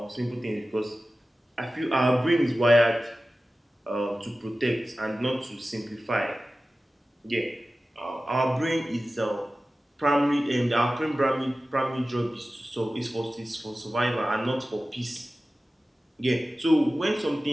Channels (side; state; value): both; normal; correlation 0.95